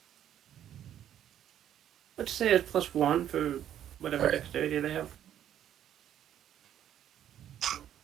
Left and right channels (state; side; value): quieter; left; 10.7 dB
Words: Let's say it's +1 for whatever Alright. dexterity they have.